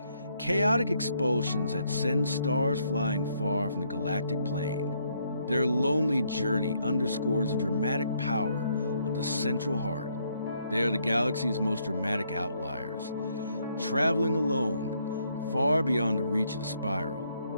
chaotic expulsions that send stars flying far from the galactic plane. Their lonely journey underscores the dramatic power of the central heart. They are the galaxy's most dramatic outliers, traveling alone, far beyond the reach of the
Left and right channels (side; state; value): both; inverted; correlation -0.72